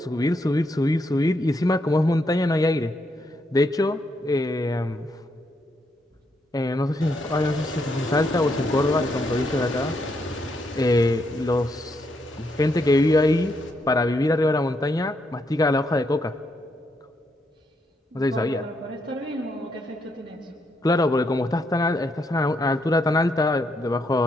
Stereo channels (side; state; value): both; normal; correlation 0.77